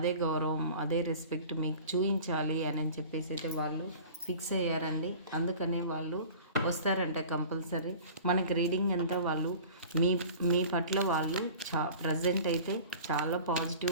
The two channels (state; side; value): inverted; both; correlation -0.41